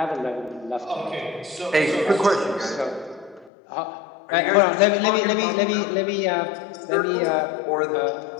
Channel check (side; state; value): right; drops out; at 3.5 s